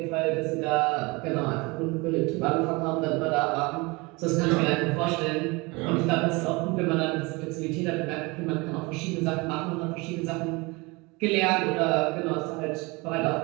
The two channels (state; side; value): quieter; left; 25.7 dB